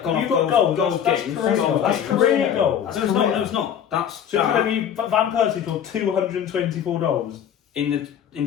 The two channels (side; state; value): right; quieter; 8.9 dB